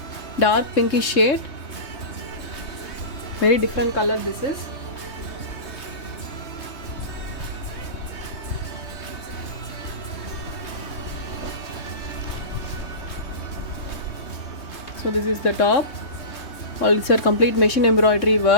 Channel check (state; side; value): late; right; 3.2 ms